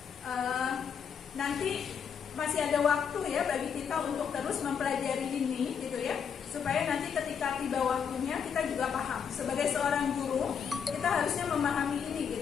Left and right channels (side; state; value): right; quieter; 7.1 dB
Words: Nanti masih ada waktu ya bagi kita untuk terus mempelajari ini, gitu ya, supaya nanti ketika tiba waktunya kita juga paham. Sebagai seorang guru, kita harusnya memahami ini